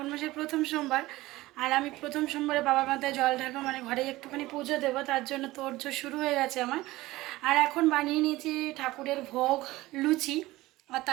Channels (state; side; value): quieter; left; 18.4 dB